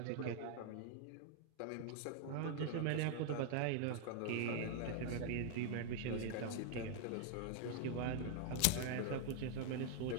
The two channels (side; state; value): both; different; correlation 0.00